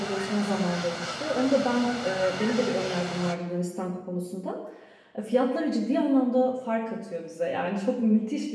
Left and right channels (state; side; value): identical; both; correlation 1.00